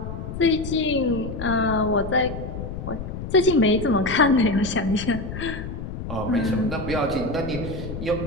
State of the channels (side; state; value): left; noise; rumble, 8 dB below the sound